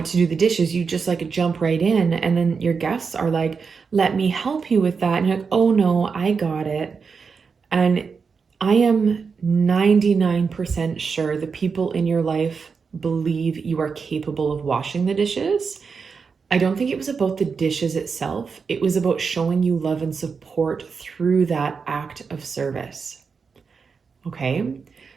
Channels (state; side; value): quieter; left; 5.4 dB